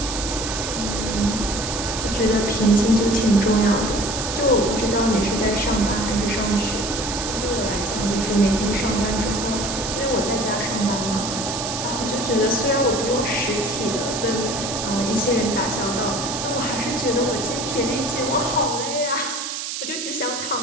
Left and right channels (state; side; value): noise; right; hiss, 5 dB below the sound